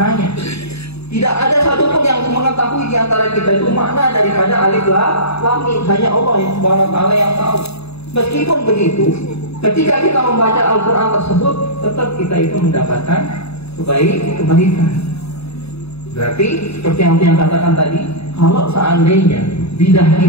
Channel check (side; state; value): right; late; 0.79 ms